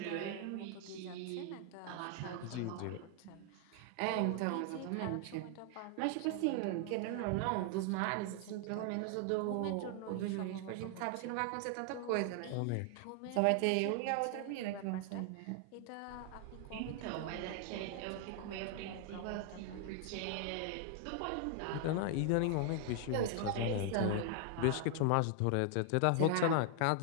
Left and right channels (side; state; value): both; different; correlation 0.00